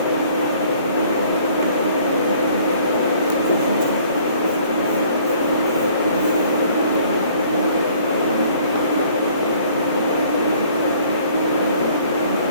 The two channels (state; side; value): inverted; both; correlation -0.57